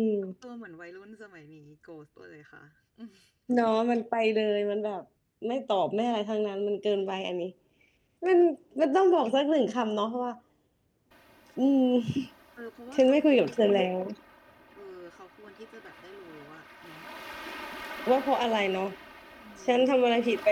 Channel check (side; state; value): both; identical; correlation 1.00